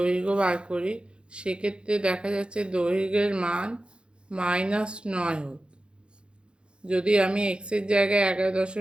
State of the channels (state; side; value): late; left; 0.055 ms